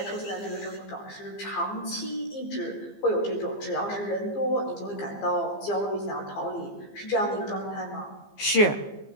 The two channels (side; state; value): right; late; 15 ms